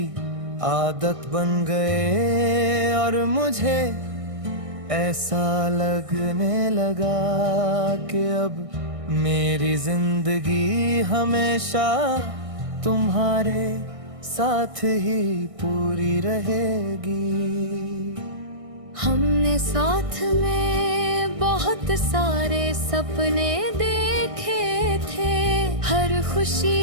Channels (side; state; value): left; late; 1.6 ms